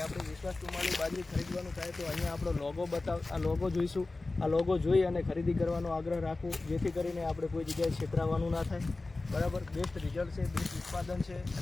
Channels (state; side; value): quieter; right; 3.3 dB